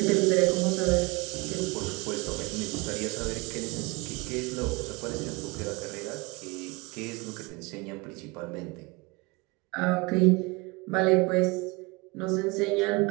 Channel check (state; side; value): quieter; left; 26.3 dB